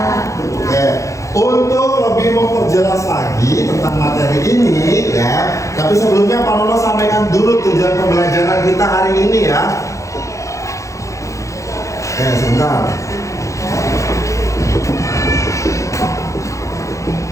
Oke. Untuk lebih memperjelas lagi tentang materi ini ya, tapi sebelumnya Pak Nono sampaikan dulu tujuan pembelajaran kita hari ini ya. Oke, sebentar.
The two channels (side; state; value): right; late; 0.15 ms